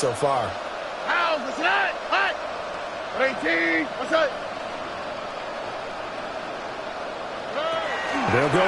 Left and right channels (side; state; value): both; identical; correlation 1.00